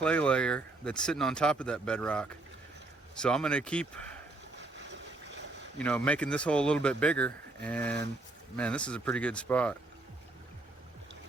layer that's sitting on top of that bedrock. So I'm gonna keep, making this hole a little bit bigger, and man, this is a pretty good spot.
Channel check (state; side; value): quieter; left; 3.0 dB